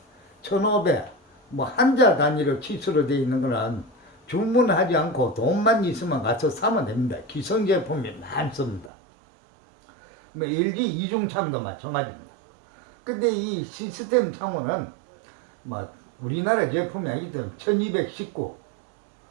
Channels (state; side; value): drops out; left; at 8.9 s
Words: 1500, 뭐 한자 단위로 치수로 되어 있는 거는 주문하지 않고 돈만 있으면 가서 사면 됩니다. 기성 제품이 많습니다. 뭐 LG 이중창도 마찬가지입니다. 근데 이 시스템 창호는 뭐 우리나라 제품이 아니기 때문에 1219,